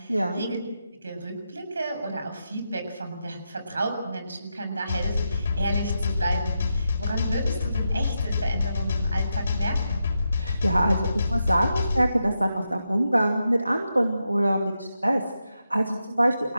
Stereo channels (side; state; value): both; inverted; correlation -0.86